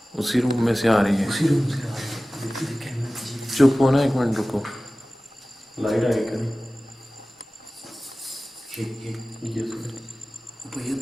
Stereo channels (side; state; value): both; normal; correlation 0.97